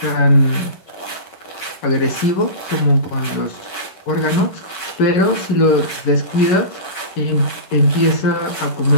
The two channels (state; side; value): late; right; 11 ms